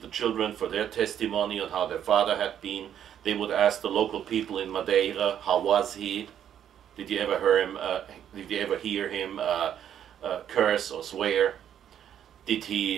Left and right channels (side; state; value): left; quieter; 9.7 dB